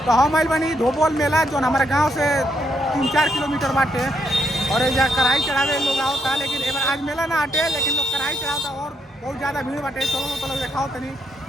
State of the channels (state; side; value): normal; both; correlation 0.76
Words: तो हम आइल बनी धोबोल मेला जो हमारे गांव से 3-4 किलोमीटर बाटे और यहाँ कढ़ाई चढ़ावे लोग आवता, लेकिन एक बार आज मेला ना हटे लेकिन लोग कढ़ाई चढ़ाता और बहुत ज़्यादा भीड़ बाटे। चलो तो लोग देखाओ तनी,